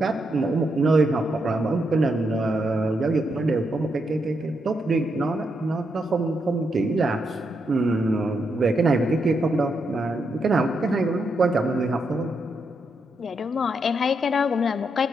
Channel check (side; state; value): both; normal; correlation 0.81